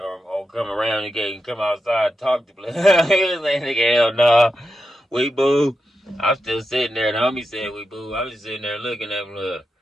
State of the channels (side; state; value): both; normal; correlation 0.88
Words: come around the gate and come outside and talk to blood. He was like, nigga, hell no. We boo. I'm still sitting there. The homie said we boo. I was just sitting there looking at blood.